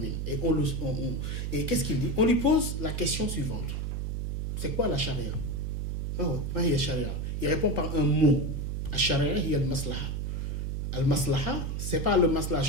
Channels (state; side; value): noise; right; hum, 2 dB below the sound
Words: Et qu'est-ce qu'il dit? On lui pose la question suivante. C'est quoi la charia? Il répond par un mot. Al-Sharia, il y a le maslaha. Al-maslaha, c'est pas le maslaha